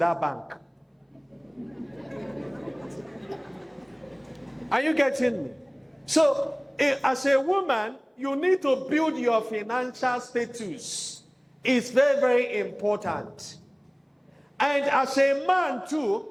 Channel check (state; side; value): identical; both; correlation 1.00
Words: bank. Are you getting me? So, as a woman, you need to build your financial status. It's very, very important. And as a man